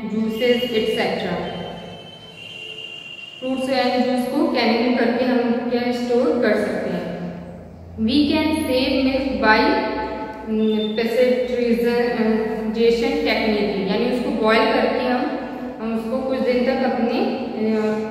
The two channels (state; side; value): identical; both; correlation 1.00